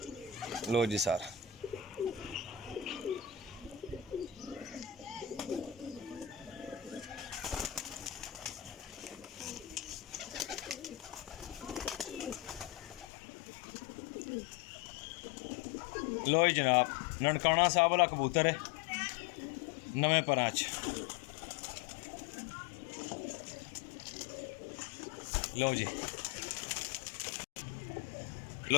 लो जी सर, लो जी जनाब, ननकाना साहब वाला कबूतर है, नवे परां च। लो जी,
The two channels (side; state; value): right; drops out; at 13.1 s